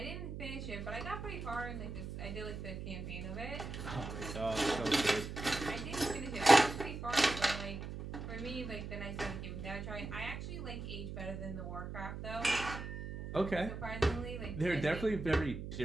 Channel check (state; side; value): noise; right; hum, 7 dB below the sound